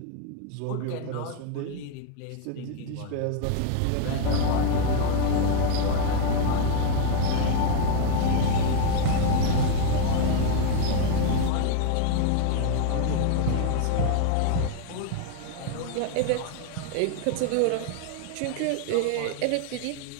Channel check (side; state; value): both; different; correlation 0.01